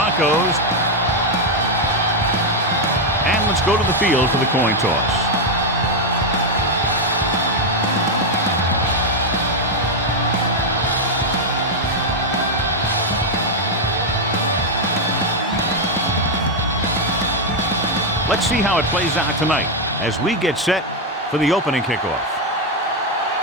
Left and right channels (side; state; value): both; normal; correlation 0.02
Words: And let's go to the field for the coin toss. Let's see how it plays out tonight as we get set for the opening kickoff.